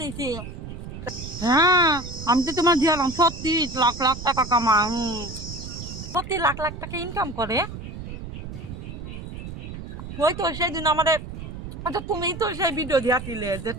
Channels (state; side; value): noise; right; rumble, 10 dB below the sound